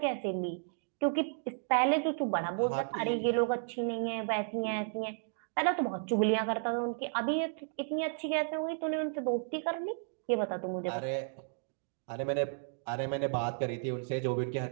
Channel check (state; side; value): silent; left; digital silence